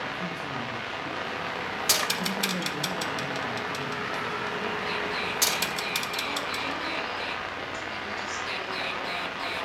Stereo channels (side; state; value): both; identical; correlation 1.00